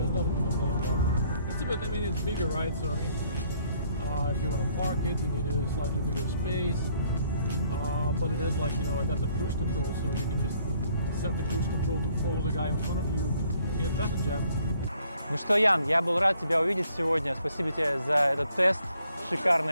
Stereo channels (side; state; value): both; inverted; correlation -0.65